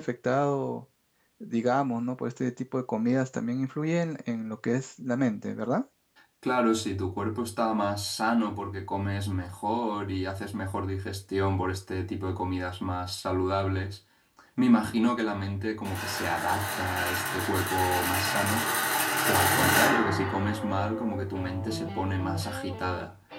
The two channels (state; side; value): identical; both; correlation 1.00